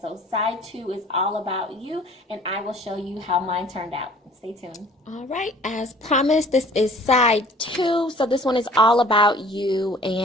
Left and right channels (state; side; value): normal; both; correlation 0.51